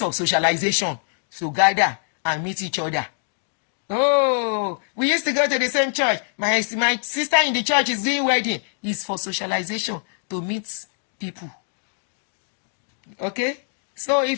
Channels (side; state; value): right; silent; digital silence